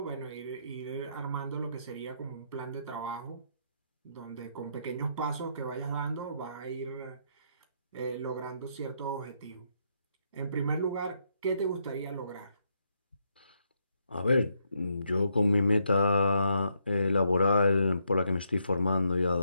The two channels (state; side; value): inverted; both; correlation -0.77